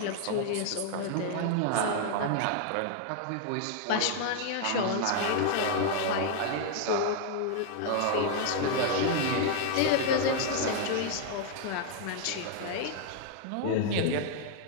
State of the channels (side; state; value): both; different; correlation 0.00